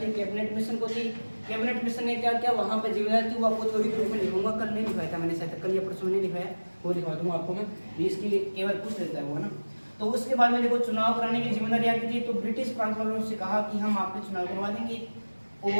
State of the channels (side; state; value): both; inverted; correlation -1.00